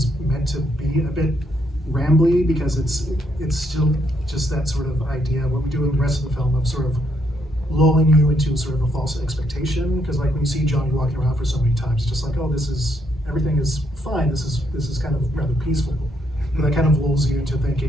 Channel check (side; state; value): both; normal; correlation 0.75